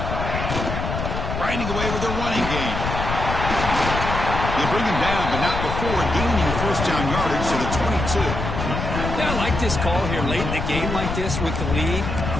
Grinding away with a running game. They bring him down, but not before gaining first down yardage to the 22. Yeah, I like this call here late in the game like this with the lead.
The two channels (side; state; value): left; noise; rumble, 3 dB below the sound